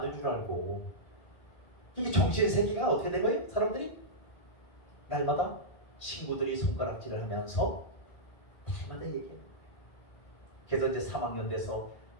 줄 알고 이게 정신 세계가 어떻게 된 거예요? 사람들이 날마다 친구들이 손가락질을 하면서 날마다 얘기해요. 그래서 이제 3학년 돼서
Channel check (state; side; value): late; right; 1.8 ms